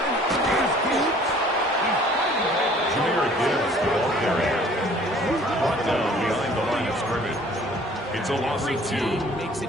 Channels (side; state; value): both; normal; correlation 0.53